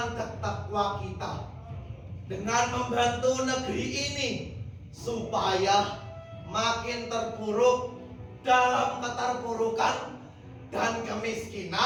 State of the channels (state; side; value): identical; both; correlation 1.00